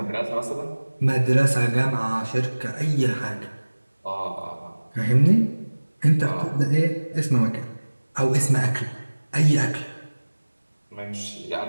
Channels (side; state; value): both; inverted; correlation -1.00